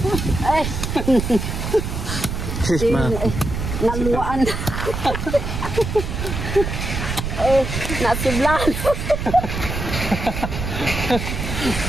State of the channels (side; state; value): right; noise; rumble, 4 dB below the sound